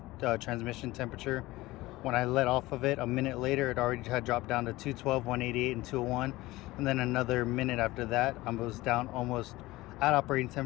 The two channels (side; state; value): right; quieter; 18.9 dB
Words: transmission temperature. When I let off of it, a minute later, it already had dropped down to 212, 188, and 201. And then another minute after that, I was down almost at operating